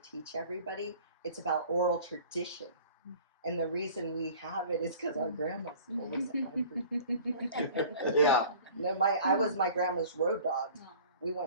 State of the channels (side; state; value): both; inverted; correlation -0.46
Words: everybody. It's about oral tradition. And the reason we have it is because our grandmas told us it. yeah. No, I was my grandma's road dog. We